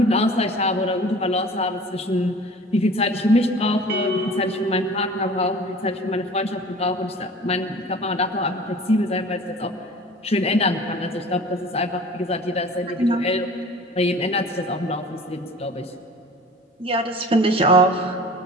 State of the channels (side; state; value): both; normal; correlation 0.43